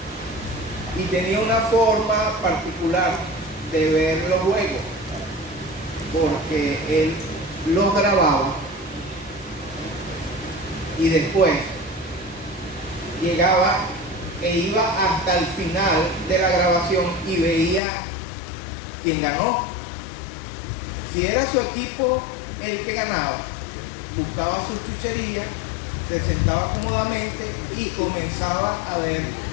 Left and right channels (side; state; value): right; drops out; at 17.8 s